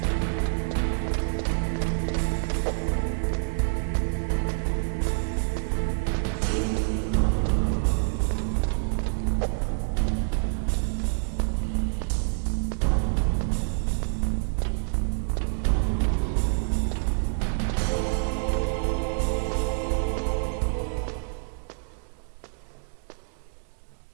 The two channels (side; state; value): left; silent; digital silence